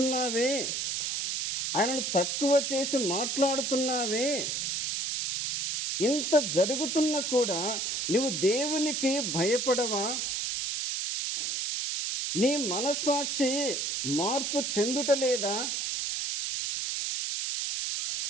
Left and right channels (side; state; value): right; noise; hiss, 1 dB below the sound